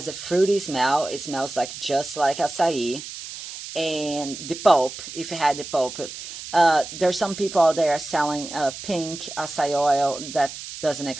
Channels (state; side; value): noise; right; hiss, 11 dB below the sound